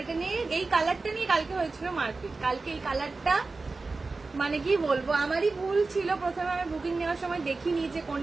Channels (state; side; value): quieter; left; 3.8 dB